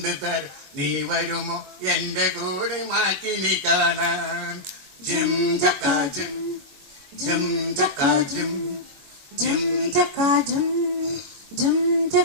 തരാം, നീ വരുമോ എന്റെ കൂടെ മാറ്റി നീ കാണാൻ. ജിം ചക്കാ ജിം ജിം ചക്കാ ജിം ജിം ചക്കാ ജിം ജിം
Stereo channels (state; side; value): late; left; 21 ms